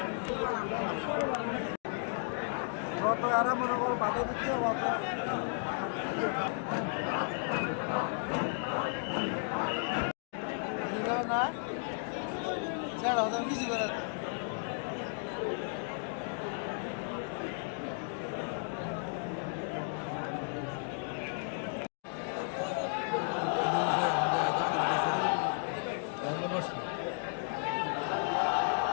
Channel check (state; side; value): silent; right; 55 dB below the other